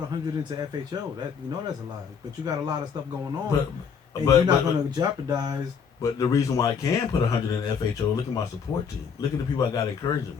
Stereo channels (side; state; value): right; quieter; 6.6 dB